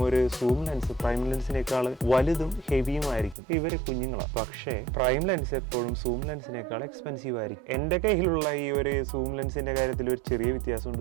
ഒരു സൂം ലെൻസ് പ്രൈം ലെൻസിനേക്കാൾ വലുതും ഹെവിയുമായിരിക്കും. ഇവര് കുഞ്ഞുങ്ങളാണ്. പക്ഷേ പ്രൈം ലെൻസ് എപ്പോഴും സൂം ലെൻസിനേക്കാൾ എക്സ്പെൻസീവ് ആയിരിക്കും. എൻ്റെ കയ്യിലുള്ള ഈ ഒരു സൂം ലെൻസിന്റെ കാര്യത്തിൽ ഒരു ചെറിയ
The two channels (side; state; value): left; drops out; at 3.4 s